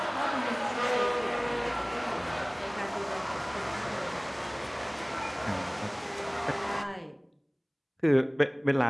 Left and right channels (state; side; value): identical; both; correlation 1.00